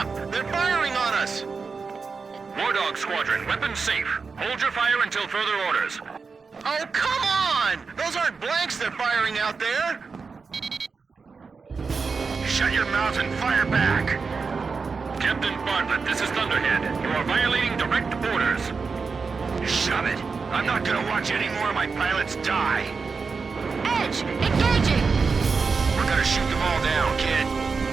They're firing on us! Wardog Squadron, weapons safe. Hold your fire until further orders. Oh, come on! Those aren't blanks they're firing out there! Shut your mouth and fire back! Captain Bartlett, this is Thunderhead. You are violating direct orders. Shove it. I'm not gonna watch any more of my pilots die. Edge, engage!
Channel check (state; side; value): quieter; left; 4.9 dB